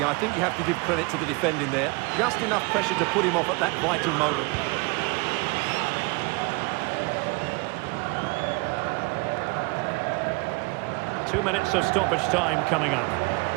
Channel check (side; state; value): left; quieter; 28.4 dB